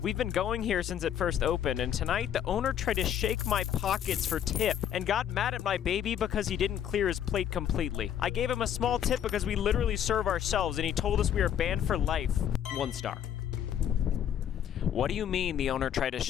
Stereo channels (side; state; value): right; quieter; 9.7 dB